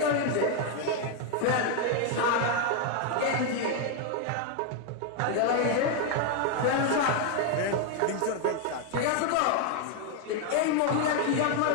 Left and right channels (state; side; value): different; both; correlation 0.01